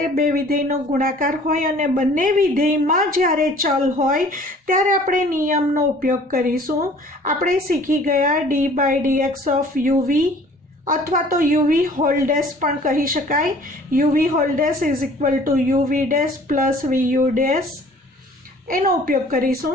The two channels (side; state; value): both; normal; correlation 0.52